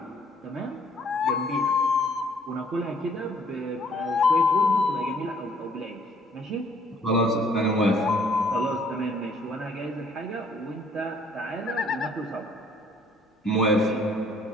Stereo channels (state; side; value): normal; both; correlation 0.61